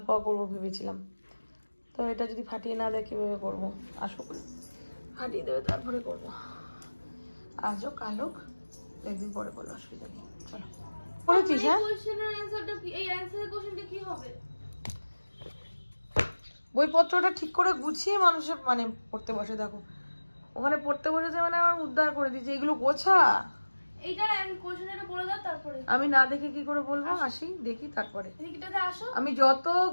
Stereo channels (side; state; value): both; inverted; correlation -1.00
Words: করবো ভেবেছিলাম, তো এটা যদি ফাটিয়ে না দেয় কীভাবে করবো? আসুক ফাটিয়ে দেবে তারপরে করবো, আজও কালক একদিন পরে করলো, অসুবিধা নেই। চলো করেছিস, হ্যাঁ বইপত্রটা ঠিক করে গুছিয়ে মানুষের মানে পড়তে বসে। দেখো ওখানে পড়তে বসেছে মানে আমার উদ্ধার করে দিয়েছে, এগুলো গোছা। আমি না দেখে কি করে বলবো? আসি দেখি তারপরে। আমি যত